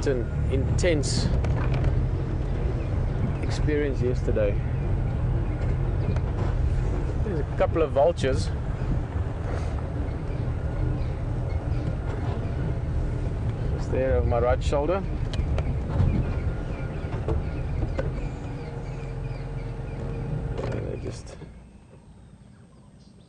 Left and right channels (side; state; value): both; identical; correlation 1.00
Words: an intense experience yesterday. There's a couple of vultures. There over my right shoulder. And they just